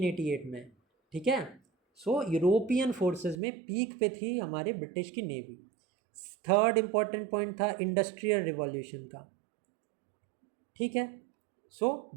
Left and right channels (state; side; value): drops out; left; at 3.4 s